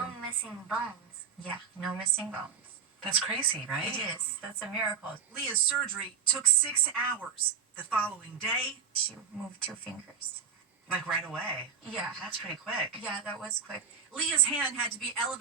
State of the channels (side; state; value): left; quieter; 6.8 dB